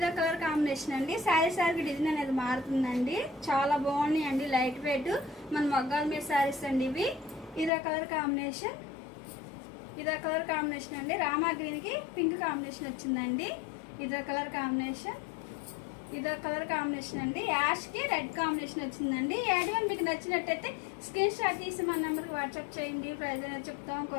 కాంబినేషన్, అండి. శారీకి డిజైన్ అనేది మారుతుందండి. చాలా బాగున్నాయి అండి. లైట్ వెయిట్ మన మగ్గాల మీద శారీస్ అండి ఇవి. ఇదో కలర్ కాంబినేషన్, అండి. రామా గ్రీన్ కి పింక్ కాంబినేషన్ వచ్చిందండి. ఇదో కలర్ కాంబినేషన్, అండి. యాష్ కి రెడ్ కాంబినేషన్ వచ్చిందండి. యాడ్ మీకు నచ్చినట్టయితే స్క్రీన్ షాట్ తీసి మన నెంబర్కి వాట్సాప్ చేయండి. ప్రైజ్ అనేది చెప్తాం,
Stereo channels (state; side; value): drops out; right; at 7.7 s